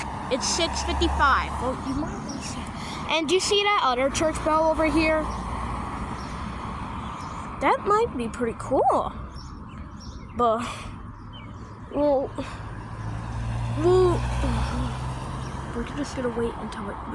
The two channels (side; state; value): both; identical; correlation 1.00